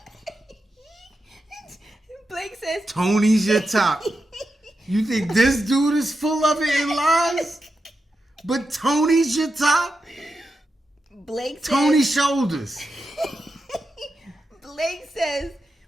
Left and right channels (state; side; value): normal; both; correlation 0.88